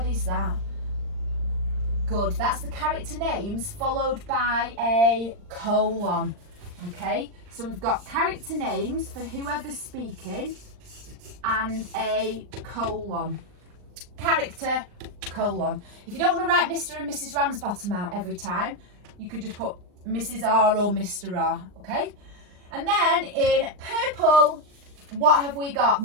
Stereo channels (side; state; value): left; late; 39 ms